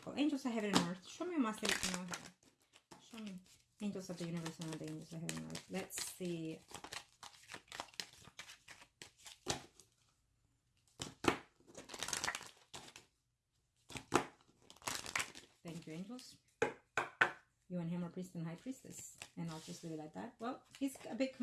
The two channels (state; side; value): identical; both; correlation 1.00